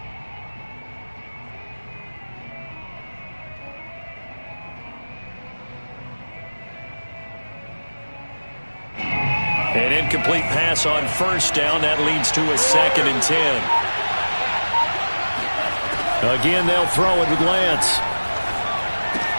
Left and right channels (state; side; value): inverted; both; correlation -1.00